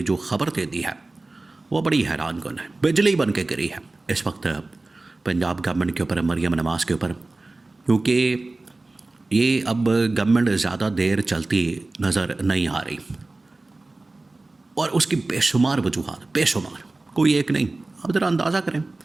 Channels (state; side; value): quieter; left; 3.1 dB